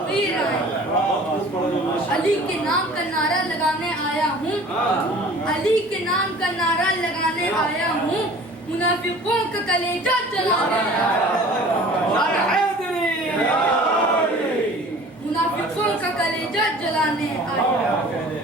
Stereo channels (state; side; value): normal; both; correlation 0.46